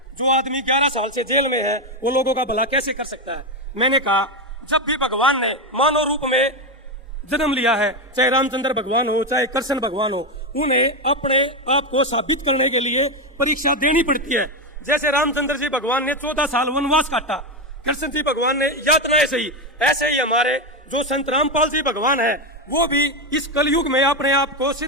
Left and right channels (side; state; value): both; normal; correlation 0.09